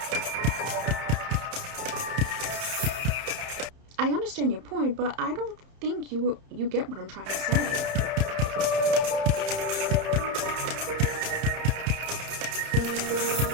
I understand your point, but I don't think you get what I'm trying to say.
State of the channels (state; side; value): late; left; 31 ms